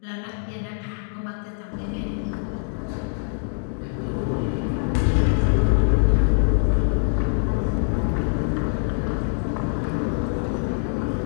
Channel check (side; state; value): right; silent; 63 dB below the other